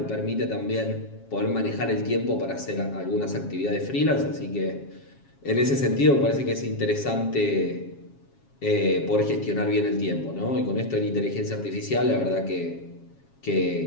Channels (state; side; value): late; right; 7.3 ms